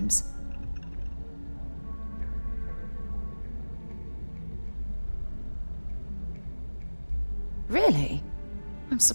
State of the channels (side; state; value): both; inverted; correlation -1.00